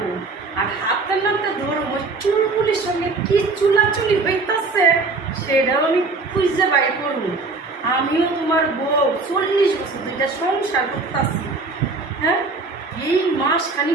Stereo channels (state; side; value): quieter; left; 3.8 dB